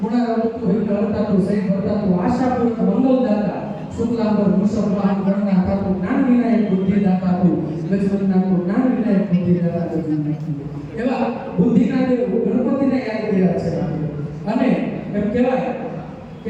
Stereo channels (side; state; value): both; identical; correlation 1.00